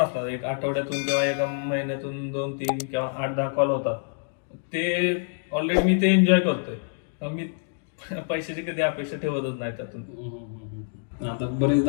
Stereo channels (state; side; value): silent; right; digital silence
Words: एक आठवड्यातून किंवा एका महिन्यातून 2-3 किंवा 8-10 कॉल होतात. ते ऑलरेडी मी ते एन्जॉय करतोय. मी पैशाची कधी अपेक्षा ठेवतच नाही त्यातून. आता